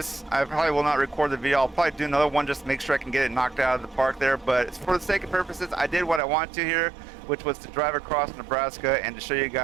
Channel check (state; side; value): drops out; left; at 6.2 s